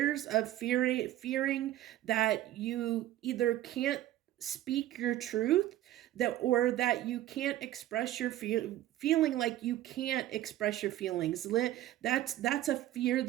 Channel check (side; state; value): left; quieter; 13.8 dB